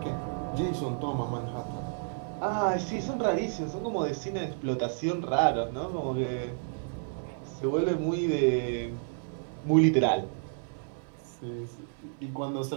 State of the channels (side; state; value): left; silent; 57 dB below the other